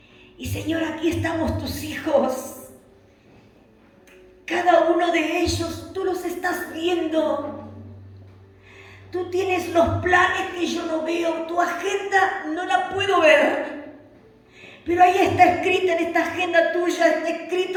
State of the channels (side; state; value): both; identical; correlation 1.00